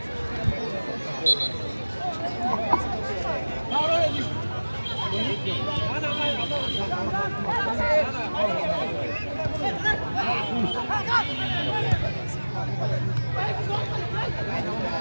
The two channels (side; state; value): both; inverted; correlation -1.00